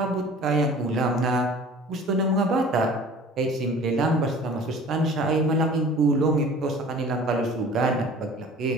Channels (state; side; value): normal; both; correlation 0.45